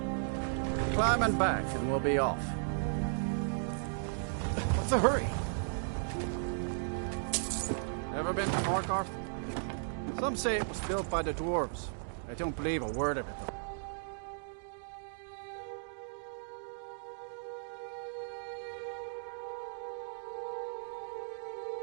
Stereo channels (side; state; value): left; silent; digital silence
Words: Climb and back, and we'll be off. What's the hurry? Ever been to Markarth? Some say it was built by the dwarves. I don't believe a word of it, though.